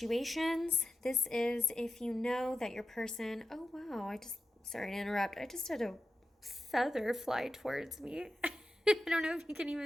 This is if you know that your person... Oh, wow, sorry to interrupt. I just had a feather fly towards me. I don't know if you can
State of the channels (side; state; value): both; normal; correlation 0.91